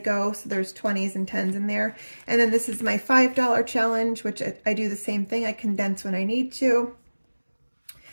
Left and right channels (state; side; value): inverted; both; correlation -1.00